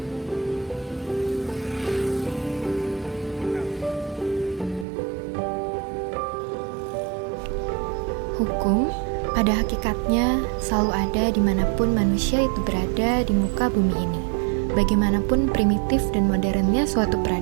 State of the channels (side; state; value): left; drops out; at 4.9 s